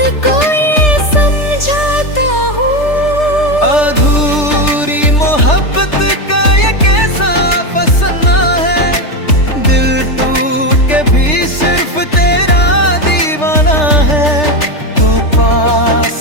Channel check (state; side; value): late; right; 3.3 ms